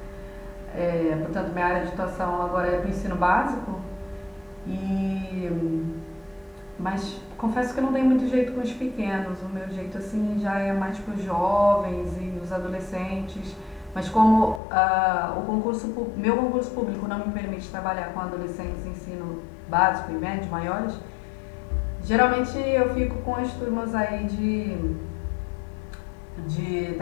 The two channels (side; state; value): right; drops out; at 14.6 s